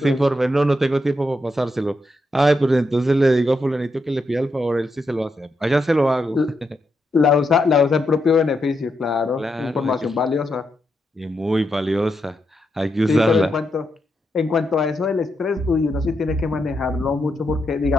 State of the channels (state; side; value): normal; both; correlation 0.83